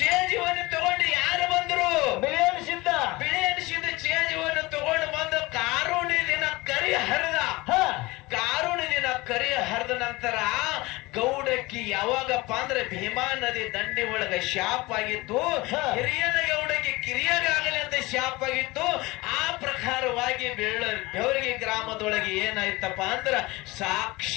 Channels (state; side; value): quieter; right; 21.8 dB